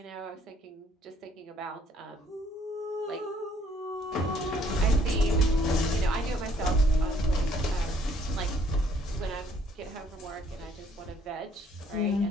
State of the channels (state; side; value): normal; both; correlation 0.64